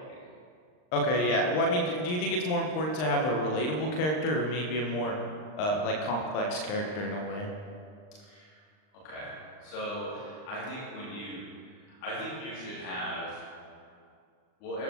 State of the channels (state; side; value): late; right; 39 ms